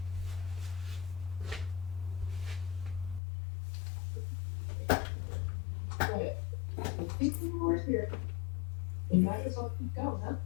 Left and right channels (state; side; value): drops out; right; at 3.2 s